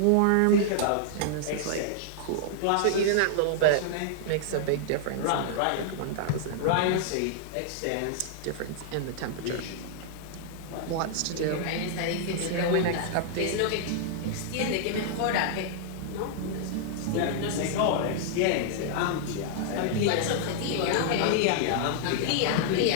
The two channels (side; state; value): both; different; correlation -0.01